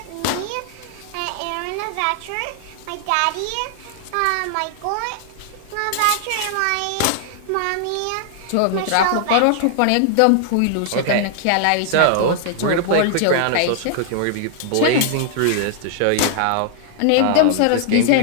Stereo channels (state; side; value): different; both; correlation -0.01